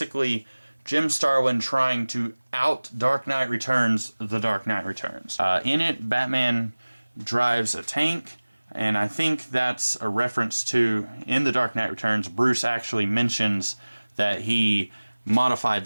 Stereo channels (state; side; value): inverted; both; correlation -1.00